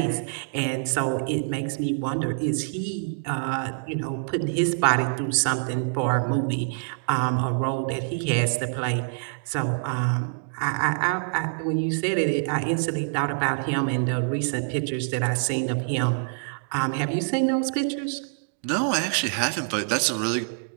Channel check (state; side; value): silent; left; digital silence